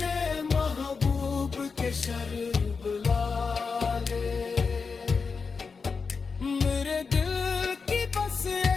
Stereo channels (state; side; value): quieter; right; 5.0 dB